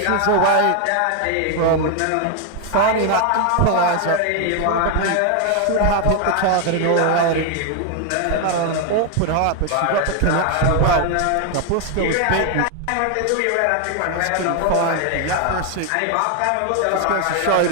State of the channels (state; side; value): different; both; correlation 0.01